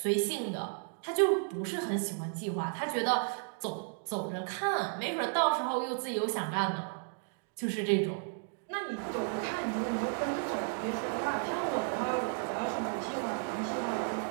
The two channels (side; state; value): left; silent; 55 dB below the other